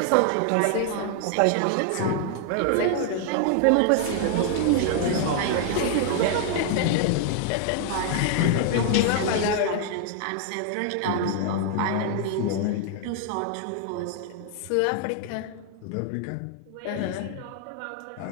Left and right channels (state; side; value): different; both; correlation 0.00